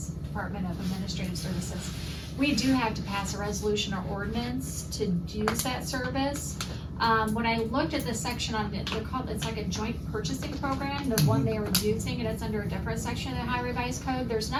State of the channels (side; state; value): both; identical; correlation 1.00